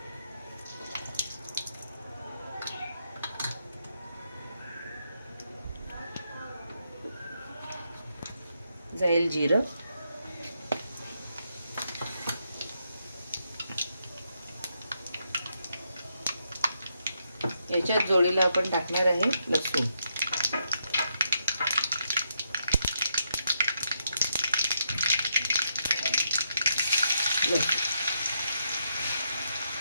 जाईल जिरं. याच्यात जोडीला आपण टाकणार आहे लसूण.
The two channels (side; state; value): both; inverted; correlation -0.79